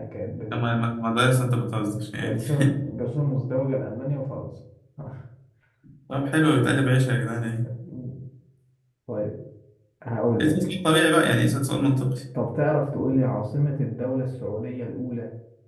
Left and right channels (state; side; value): identical; both; correlation 1.00